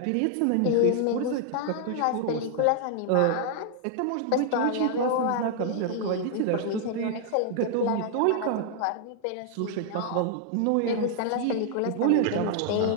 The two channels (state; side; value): different; both; correlation 0.00